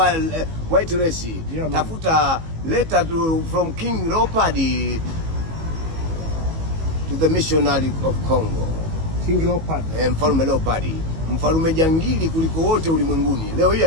white race, tafuta letter from King Leopold to the missionary of Congo. King Leopold. Mfalme Leopold. Mfalme jangili kuliko wote ulimwenguni. Leo hii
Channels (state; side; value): late; left; 18 ms